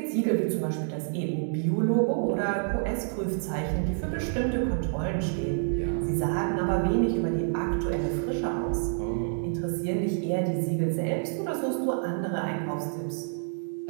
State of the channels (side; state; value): left; silent; digital silence